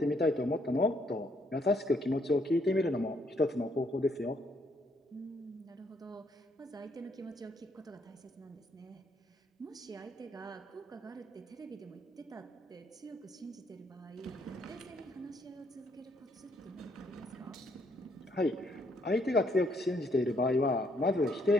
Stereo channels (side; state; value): both; normal; correlation 0.71